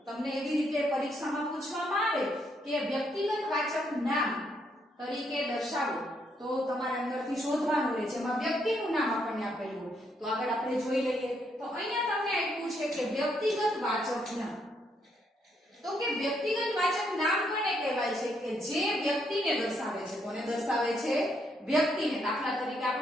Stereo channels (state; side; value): normal; both; correlation 0.75